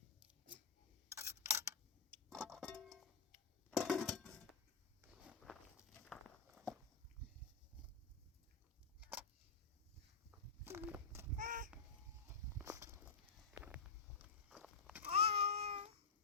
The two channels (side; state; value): right; quieter; 5.0 dB